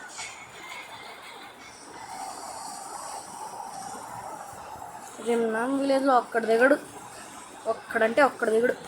రిమ్నామ్ విలేజ్లో ఒక్కడు దిగడు, ఒక్కడంటే ఒక్కడు దిగుడు.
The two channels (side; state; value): both; identical; correlation 1.00